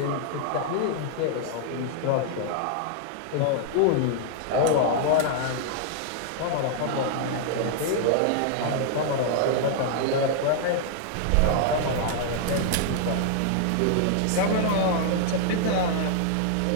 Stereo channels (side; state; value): both; different; correlation -0.01